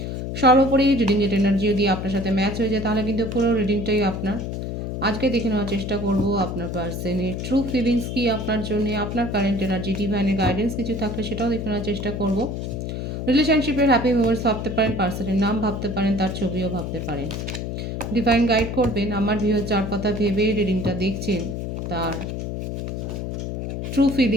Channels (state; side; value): noise; left; hum, 4 dB below the sound